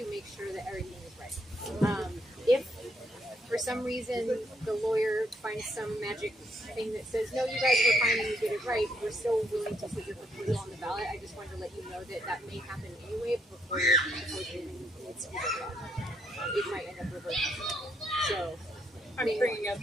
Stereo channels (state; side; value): normal; both; correlation 0.74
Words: make sure that everything is right. If for some reason the lawyer finds some magic thing that says, no, you guys were fine and you did it right, we're still willing to put your proposal on the ballot. I just wanted to let you know that that may happen anyway before your proposal needs to be voted on. It might end up reverting. So I'm bringing up